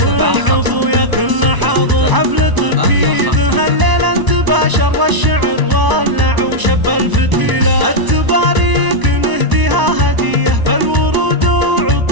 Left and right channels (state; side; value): late; left; 1.0 ms